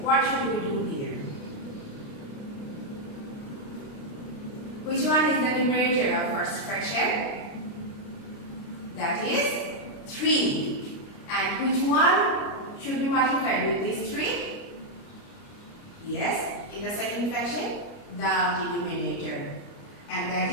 what should we do here? Which one is the numerator of first fraction? That is 3. And which one should be multiplied with these 3? Yes, in the second fraction, the denominator. And that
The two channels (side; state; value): right; late; 29 ms